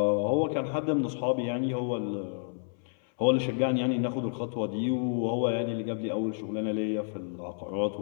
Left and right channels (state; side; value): silent; right; 58 dB below the other